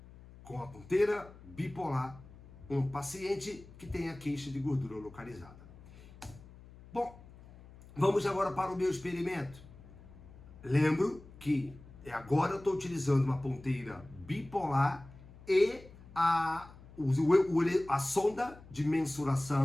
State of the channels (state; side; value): noise; left; hum, 20 dB below the sound